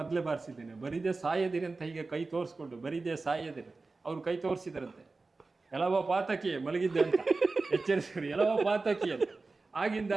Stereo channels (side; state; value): left; quieter; 3.7 dB